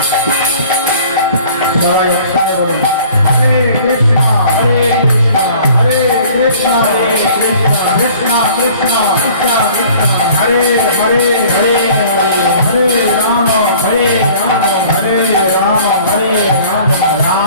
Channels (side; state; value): both; inverted; correlation -0.51